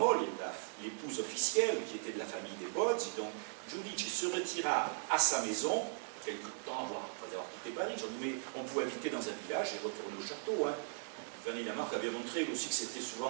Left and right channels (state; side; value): silent; left; 52 dB below the other